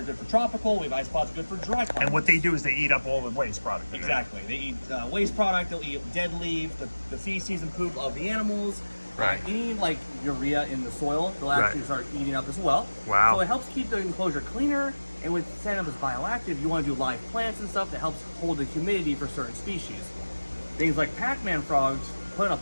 good for tropical. We have isopods good for dry climate. And what they do is they eat up all the waste product. Exactly. They eat waste product. They'll eat dead leaves, the feces and poop of the animals. Right. Any like urea in the soil, they'll actually start eating up as well. Wow. So it helps keep the enclosure cleaner. And with setting up as bioactive, you want to do live plants and stuff that helps hold the humidity for certain species. Things like Pacman frogs, put a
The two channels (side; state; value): both; inverted; correlation -1.00